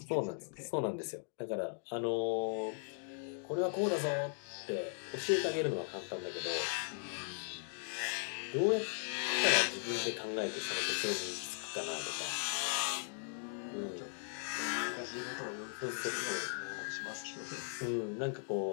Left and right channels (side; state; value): right; silent; digital silence